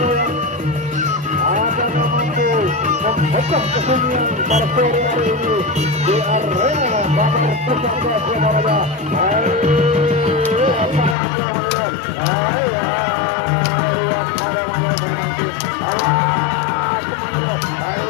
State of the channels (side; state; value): right; drops out; at 11.2 s